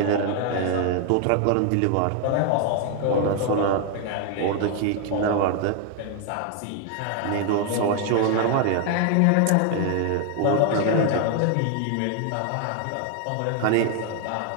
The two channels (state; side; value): different; both; correlation 0.00